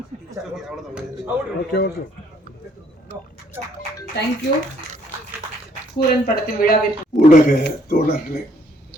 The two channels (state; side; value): normal; both; correlation 0.65